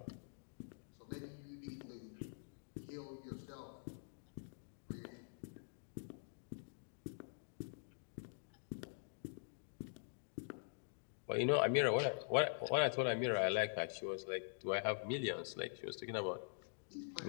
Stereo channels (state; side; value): silent; right; digital silence